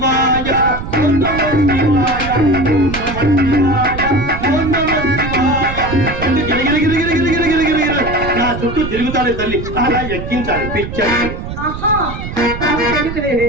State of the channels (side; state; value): right; noise; rumble, 8 dB below the sound